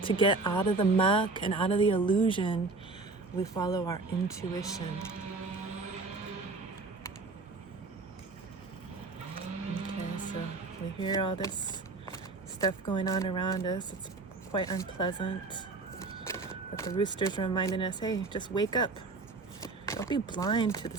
to get out of the muck and out of the illusion, we follow our intuition. Okay, so we hear all this stuff going on around us. It's quite unpleasant. But the rooster's reminding us, hey, just wake up. Don't be blind to the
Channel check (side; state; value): left; quieter; 3.7 dB